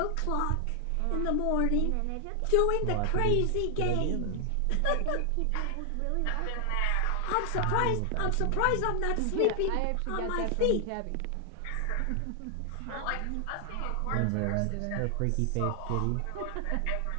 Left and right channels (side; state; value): both; different; correlation 0.00